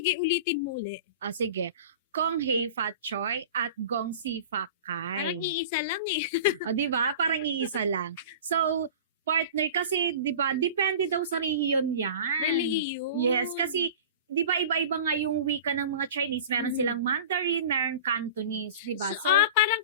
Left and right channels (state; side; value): inverted; both; correlation -0.37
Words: ulitin mo uli. Sige. Konghei Fat Choi at Gongsi Fat Parang Kai. iisa lang eh. Di ba? Parang iisa lang. So, partner, kasi, di ba, depende daw sa rehiyon yan. Reliyon. Yes, kasi, di ba, iba-iba nga yung wika ng mga Chinese. Meron silang Mandarin, meron Cantonese, di ba? So, parang